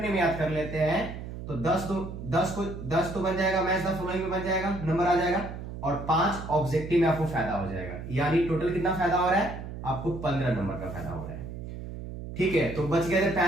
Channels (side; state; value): right; noise; hum, 9 dB below the sound